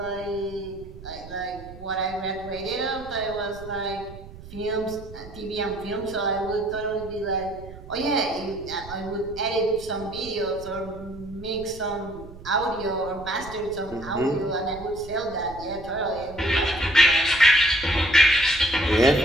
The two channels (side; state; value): right; noise; rumble, 16 dB below the sound